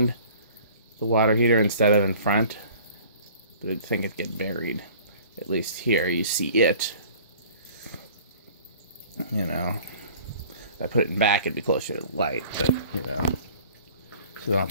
the water heater instead of in front, but I think it'd get buried. At least here you see it. You know, if I put it in back, it'd be closer to the light, but you know. So then I'll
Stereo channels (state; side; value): inverted; both; correlation -0.49